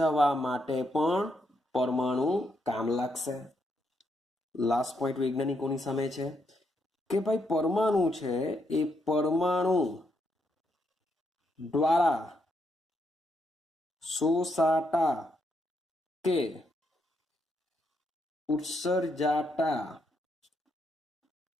માટે પણ પરમાણુ કામ લાગશે. લાસ્ટ પોઈન્ટ વૈજ્ઞાનિકોની સામે છે કે ભાઈ પરમાણુ છે એ પરમાણુ દ્વારા શોષાતા કે ઉત્સર્જાતા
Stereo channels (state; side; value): normal; both; correlation 0.78